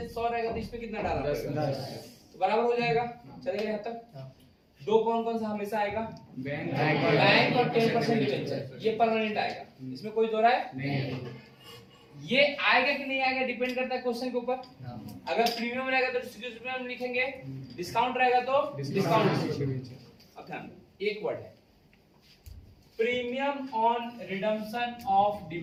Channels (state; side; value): identical; both; correlation 1.00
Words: रहेगा तो इसमें कितना डालना पड़ेगा, तो बराबर हो जाएगा। चलेगा यहाँ तक। 2 कौन सा हमेशा आएगा, बैंक और 10% डिवेंचर, ये परमानेंट आएगा, इसमें कोई दो राय नहीं। ये आएगा कि नहीं आएगा डिपेंड करता है क्वेश्चन के ऊपर। अगर प्रीमियम रहेगा तो प्रीमियम लिखेंगे, डिस्काउंट रहेगा तो डिस्काउंट। अब ध्यान दो, एक वर्ड है premium on redemption of